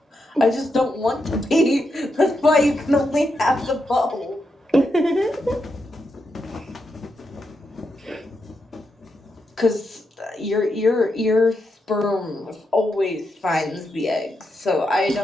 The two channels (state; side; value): normal; both; correlation 0.84